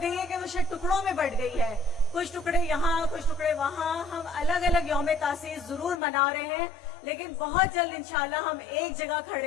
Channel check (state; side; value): drops out; right; at 6.0 s